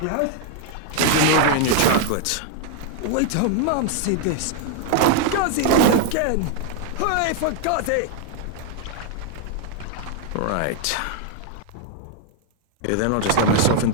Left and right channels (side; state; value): both; different; correlation 0.00